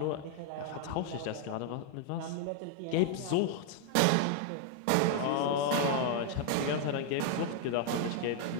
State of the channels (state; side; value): different; both; correlation 0.00